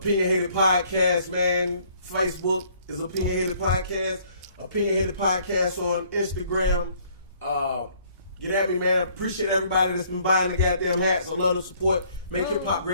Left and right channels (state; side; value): inverted; both; correlation -0.61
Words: Podcast, man. Facebook is OpinionHated Podcast. OpinionHated Podcast on Instagram. Get at me, man. I appreciate everybody that's been buying the goddamn hats. I love the support. Make hip hop